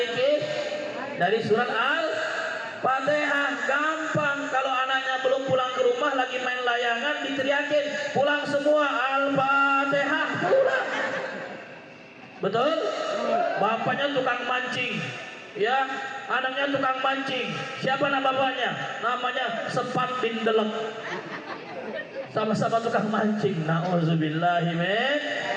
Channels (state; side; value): identical; both; correlation 1.00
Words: Dari surat Al-Fatihah. Gampang. Kalau anaknya belum pulang ke rumah lagi main layangan, diteriakin pulang semua, Al-Fatihah pulang. Betul? Bapaknya tukang mancing, ya anaknya tukang mancing. Siapa nama bapaknya? Namanya Sepat bin Delek. Sama-sama tukang mancing. Nauzubillahi min.